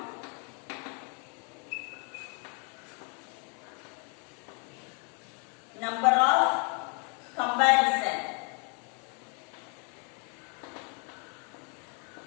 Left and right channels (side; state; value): right; quieter; 36.8 dB